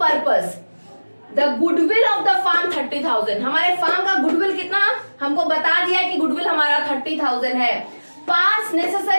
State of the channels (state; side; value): inverted; both; correlation -1.00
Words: the goodwill of the firm 30,000। हमारे फार्म का गुडविल कितना, हमको बता दिया है कि गुडविल हमारा 30,000 है। पास